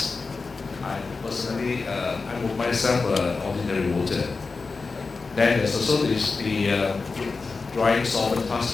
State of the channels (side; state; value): right; quieter; 4.2 dB